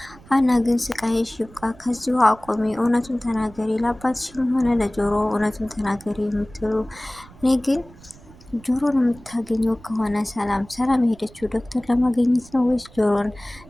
ሀና ግን ስቃይሽ ይብቃ፣ ከዚሁ አቆሚ፣ እውነቱን ተናገሪ፣ ለአባትሽም ሆነ ለጆሮ እውነቱን ተናገሪ የምትሉ እኔ ግን ጆሮን የምታገኘው ከሆነ ሰላም የሄደችው ዶክተር ለማግኘት ነው ወይስ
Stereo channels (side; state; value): right; noise; rumble, 22 dB below the sound